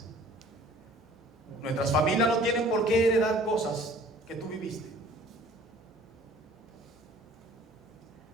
Nuestras familias no tienen por qué heredar cosas que tú viviste.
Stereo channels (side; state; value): both; normal; correlation 0.51